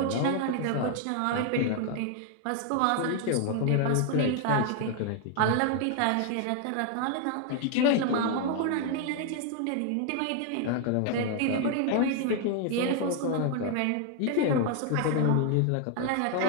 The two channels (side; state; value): both; different; correlation 0.00